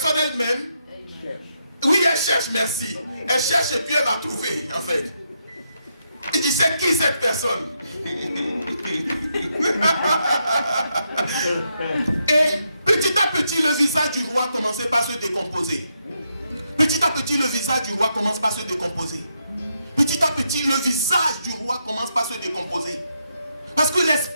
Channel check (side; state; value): both; inverted; correlation -0.80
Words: elle-même, oui, elle cherche, merci. Elle cherche et puis elle va trouver, en fait. Il dit, c'est qui cette personne? Et petit à petit, le visage du roi commençait par se décomposer. Petit à petit, le visage du roi commence par se décomposer. Petit à petit, le visage du roi commence par se décomposer. Parce que